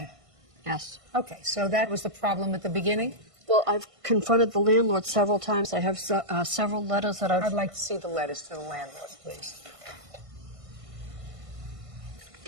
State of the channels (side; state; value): left; late; 1.5 ms